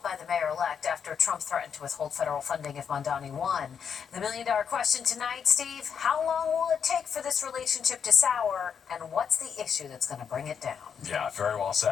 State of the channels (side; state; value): right; quieter; 7.2 dB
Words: by the mayor-elect after Trump threatened to withhold federal funding if Mamdani won. The million-dollar question tonight, Steve, how long will it take for this relationship to sour, and what's the issue that's going to bring it down? Yeah, very well